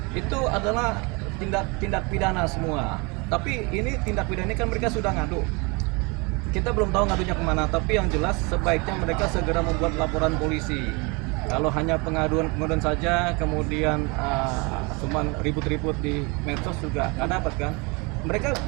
Itu adalah tindak pidana semua. Tapi ini tindak pidana ini kan mereka sudah ngadu. Kita belum tahu ngadunya kemana, tapi yang jelas sebaiknya mereka segera membuat laporan polisi. Kalau hanya pengaduan saja, kemudian cuman ribut-ribut di medsos juga nggak dapat kan. Mereka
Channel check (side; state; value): left; quieter; 28.8 dB